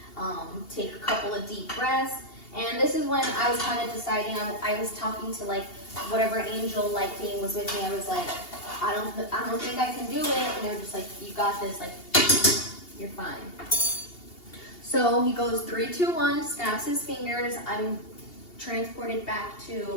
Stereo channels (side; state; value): right; late; 2.8 ms